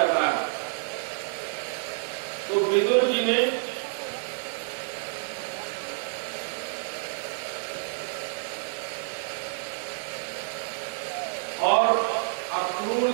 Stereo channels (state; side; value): silent; left; 59 dB below the other